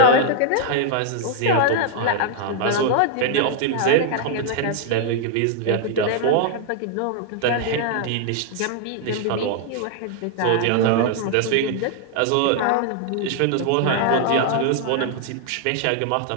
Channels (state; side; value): different; both; correlation 0.00